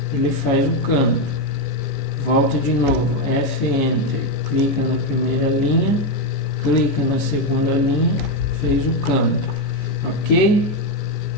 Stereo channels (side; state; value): right; late; 14 ms